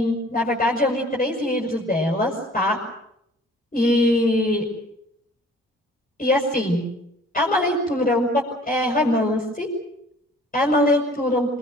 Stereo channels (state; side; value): normal; both; correlation 0.51